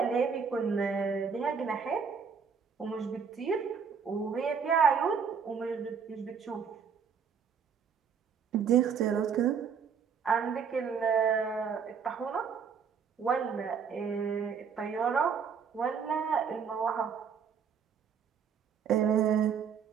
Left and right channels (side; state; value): left; quieter; 6.4 dB